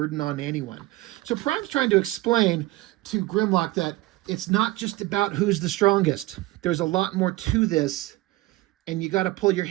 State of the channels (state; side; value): quieter; left; 18.7 dB